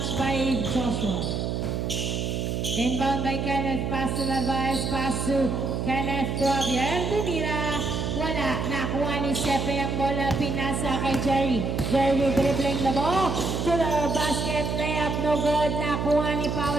by Joshua. Inbound by Kenneth, pass to Narvaez, pass to Kenneth, to Javier, tumira. Wala, nakuha ni Sepe ang bola, pinasa kay Jerry. Jerry dribbling the ball to the basket, layup, no good. Nakuha ni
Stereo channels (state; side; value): noise; right; hum, 1 dB below the sound